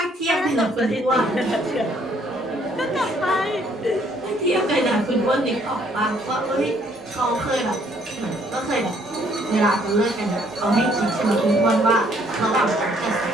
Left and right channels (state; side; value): normal; both; correlation 0.65